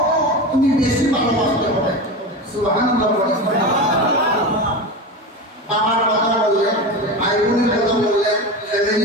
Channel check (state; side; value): normal; both; correlation 0.24